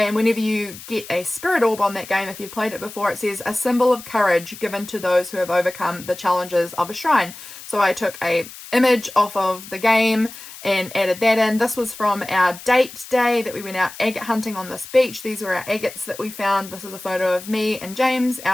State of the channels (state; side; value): noise; left; hiss, 15 dB below the sound